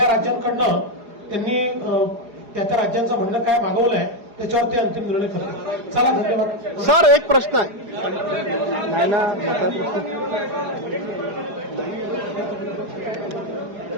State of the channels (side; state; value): left; late; 4.8 ms